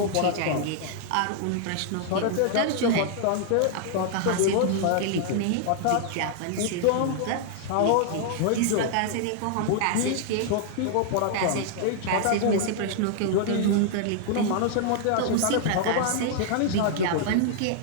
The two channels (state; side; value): different; both; correlation -0.01